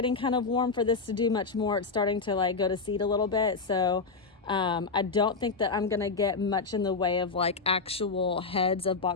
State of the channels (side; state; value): right; quieter; 4.4 dB